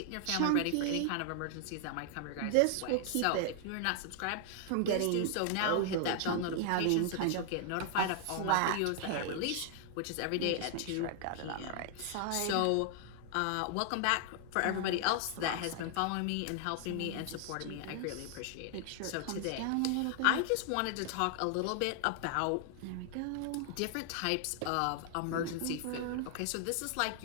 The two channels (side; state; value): both; different; correlation 0.00